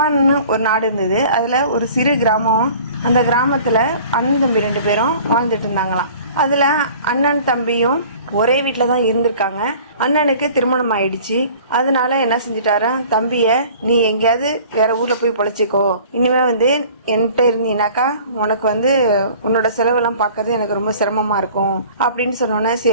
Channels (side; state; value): both; inverted; correlation -0.48